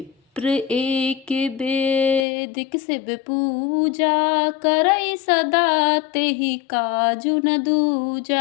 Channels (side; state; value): right; drops out; at 2.2 s